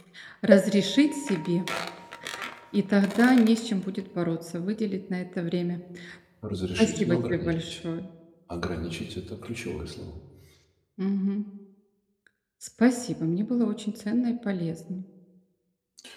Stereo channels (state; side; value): identical; both; correlation 1.00